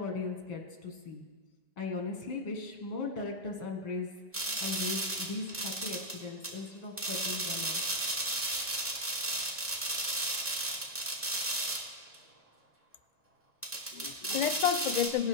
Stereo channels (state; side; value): late; right; 1.9 ms